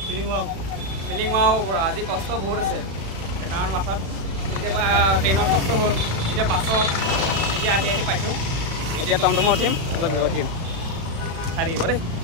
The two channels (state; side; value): late; left; 36 ms